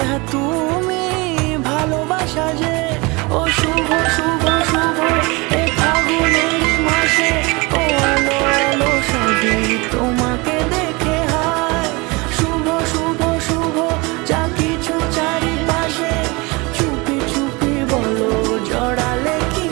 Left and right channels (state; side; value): quieter; left; 25.9 dB